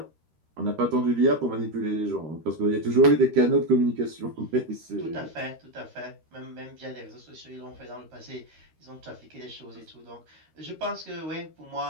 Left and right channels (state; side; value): late; left; 13 ms